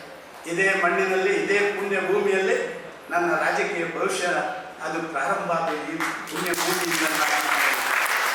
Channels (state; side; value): identical; both; correlation 1.00